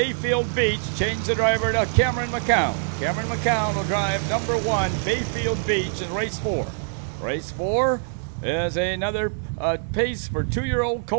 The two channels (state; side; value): silent; left; 59 dB below the other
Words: Beach, changed the driver to Cameron McCown. Cameron McCown will drive number 1, Bayfield Beach in race 4. Race 4 is another pace for 2-year-old